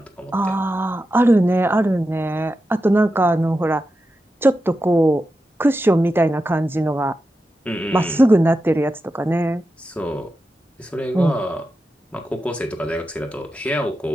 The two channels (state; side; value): normal; both; correlation 0.90